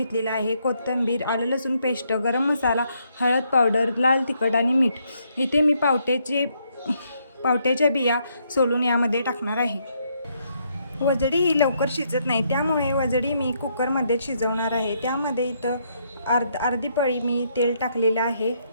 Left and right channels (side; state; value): both; inverted; correlation -0.74